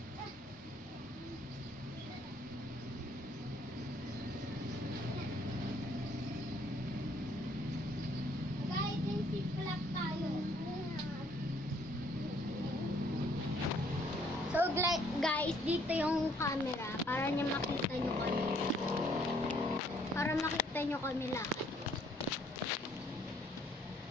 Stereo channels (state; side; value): normal; both; correlation 0.64